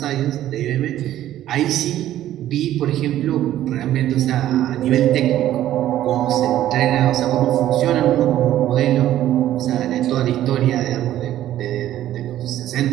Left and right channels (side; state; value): left; quieter; 12.9 dB